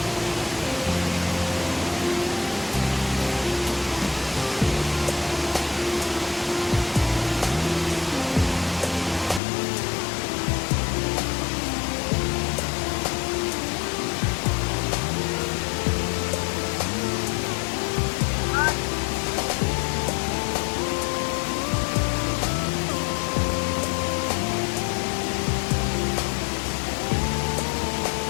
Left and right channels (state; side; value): drops out; right; at 9.4 s